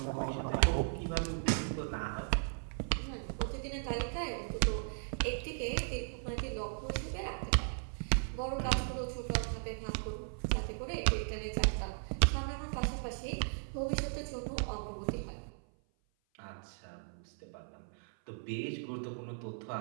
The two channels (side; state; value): left; silent; 53 dB below the other